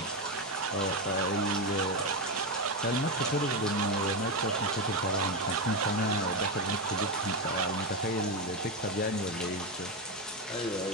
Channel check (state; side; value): normal; both; correlation 0.11